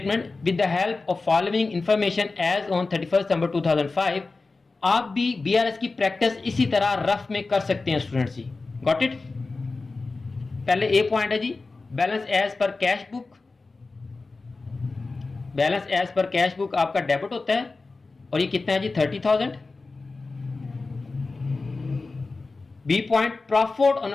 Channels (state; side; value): quieter; right; 3.7 dB